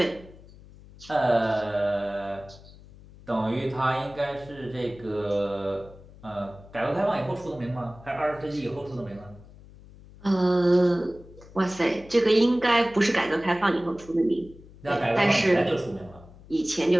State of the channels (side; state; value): left; noise; hum, 21 dB below the sound